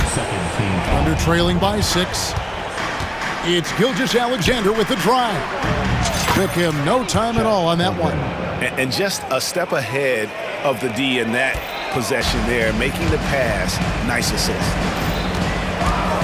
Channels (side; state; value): both; identical; correlation 1.00